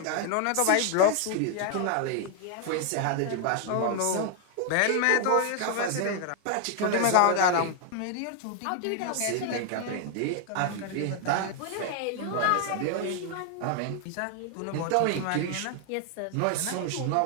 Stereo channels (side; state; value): both; different; correlation 0.00